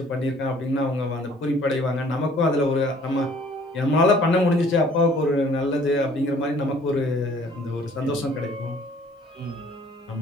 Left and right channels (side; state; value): both; normal; correlation 0.56